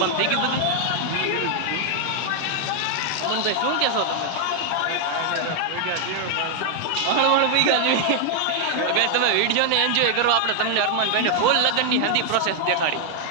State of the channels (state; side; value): different; both; correlation 0.00